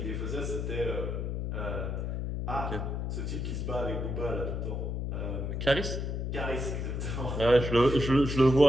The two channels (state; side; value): noise; left; hum, 2 dB below the sound